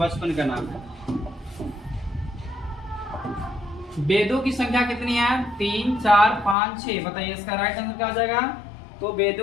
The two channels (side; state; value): right; drops out; at 6.6 s